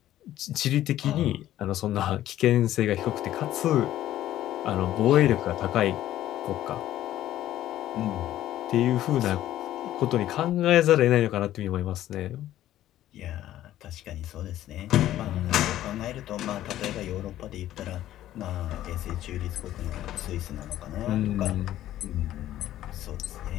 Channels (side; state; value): right; quieter; 13.2 dB